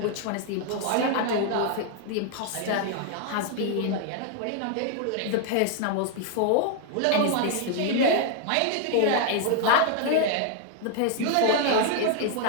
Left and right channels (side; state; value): both; different; correlation 0.00